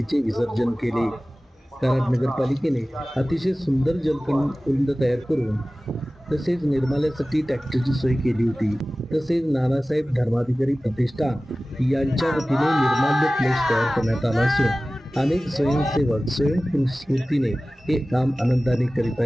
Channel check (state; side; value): normal; both; correlation 0.97